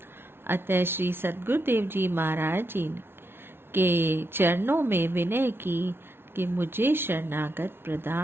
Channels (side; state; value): left; late; 0.11 ms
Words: अतः श्री सद्गुरुदेव जी महाराज जी के चरणों में विनय की कि मुझे शरणागत